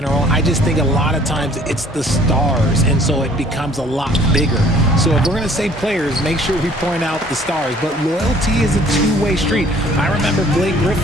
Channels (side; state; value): both; normal; correlation 0.56